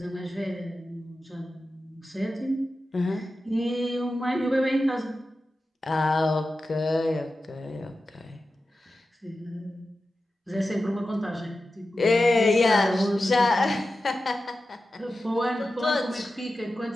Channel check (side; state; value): both; normal; correlation 0.93